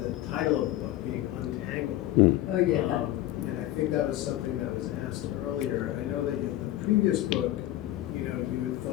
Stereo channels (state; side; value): quieter; right; 14.8 dB